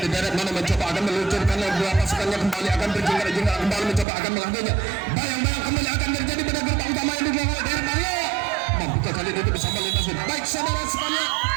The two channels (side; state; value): left; drops out; at 4.0 s